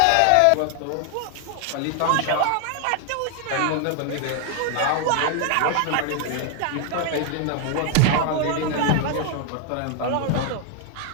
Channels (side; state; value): both; different; correlation 0.00